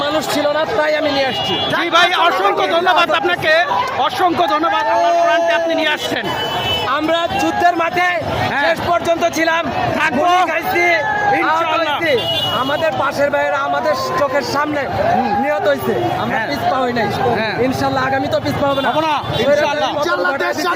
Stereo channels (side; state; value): both; identical; correlation 1.00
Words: মানুষ ছিল না, তাই আমি নিয়ে আসছি। জি ভাই, অসংখ্য ধন্যবাদ আপনাকে, অসংখ্য ধন্যবাদ। আমার কোরআনটি আপনি নিয়ে আসছেন। আমরা যুদ্ধের মাঠে শেষ পর্যন্ত ছিলাম, থাকবো গুলি খাইছি, ইনশাআল্লাহ। আহত হইছি। আমাদের পাশের ভাইয়েরা আমাদের চোখের সামনে নিহত হয়েছে, আমরা পিছপা হই নাই। ইনশাআল্লাহ আগামী তো পিছপা হবে না। হবো না, ইনশাআল্লাহ।